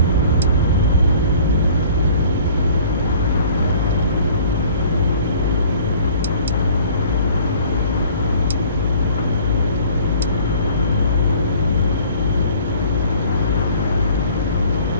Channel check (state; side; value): inverted; both; correlation -0.51